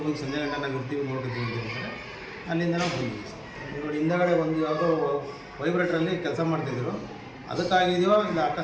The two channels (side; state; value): both; identical; correlation 1.00